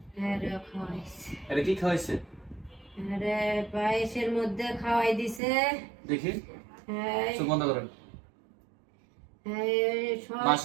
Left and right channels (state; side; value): drops out; left; at 5.4 s